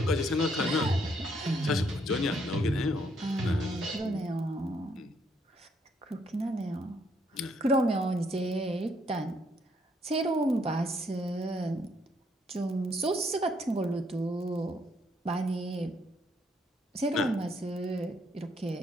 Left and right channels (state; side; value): normal; both; correlation 0.70